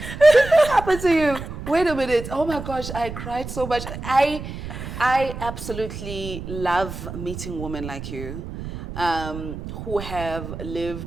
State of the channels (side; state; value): right; noise; rumble, 9 dB below the sound